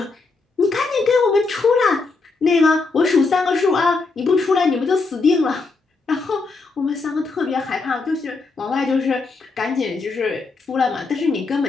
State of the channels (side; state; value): right; quieter; 4.0 dB